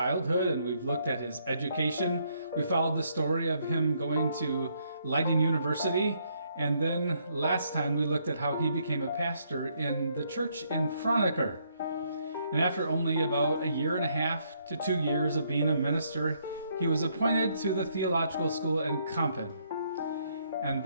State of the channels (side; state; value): both; inverted; correlation -0.72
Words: and we've looked at his education. We followed the story of him going to Leiden University, and then last time we looked at how he became a pastor in the church in Franeker. And after only about a year and a half to 2 years of being a minister, he was appointed to the theological school in Kampen. And